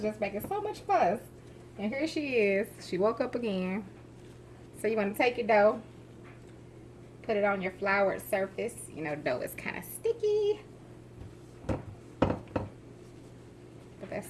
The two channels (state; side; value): identical; both; correlation 1.00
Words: just making so much fuss. And here she is. She woke up again. So you want to take your dough. Put it on your floured surface. You know, dough is kind of sticky. But